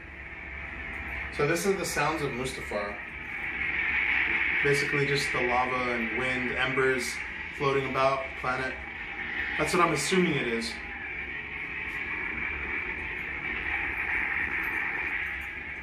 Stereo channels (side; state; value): both; identical; correlation 1.00